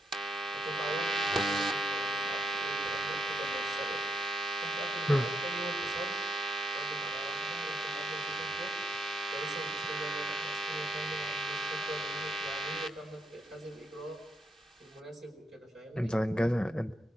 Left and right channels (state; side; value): normal; both; correlation 0.76